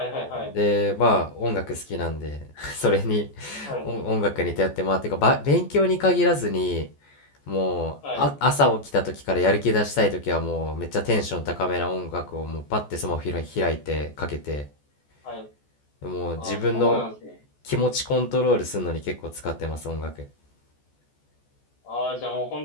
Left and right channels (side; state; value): right; late; 14 ms